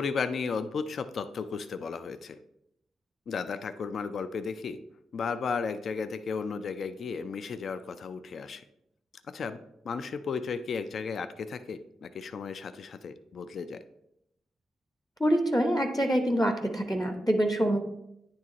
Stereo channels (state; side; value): normal; both; correlation 0.86